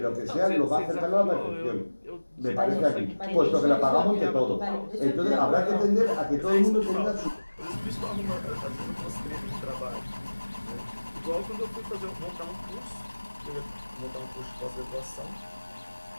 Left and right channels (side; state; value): both; inverted; correlation -1.00